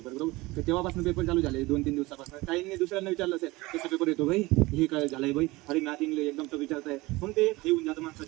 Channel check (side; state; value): left; quieter; 21.2 dB